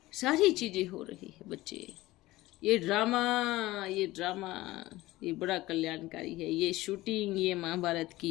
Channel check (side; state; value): right; quieter; 18.1 dB